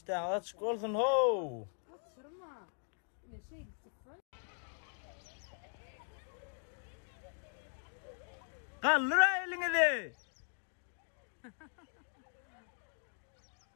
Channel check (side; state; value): right; silent; 51 dB below the other